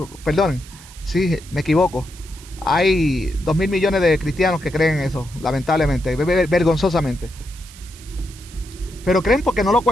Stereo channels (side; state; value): right; noise; hiss, 20 dB below the sound